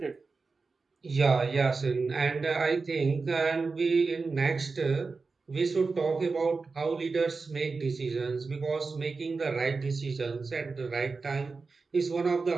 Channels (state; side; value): quieter; left; 4.3 dB